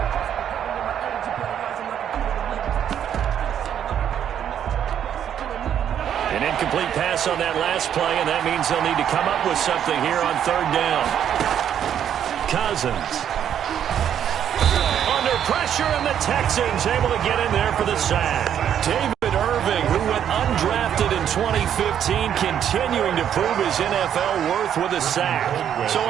An incomplete pass on that last play, and that means they'll need to come up with something here on 3rd down. Cousins. Under pressure, and the Texans able to get in there for the sack. David Irving, who went undrafted in 2015, continuing to prove his NFL worth with a sack. So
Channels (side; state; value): left; quieter; 9.4 dB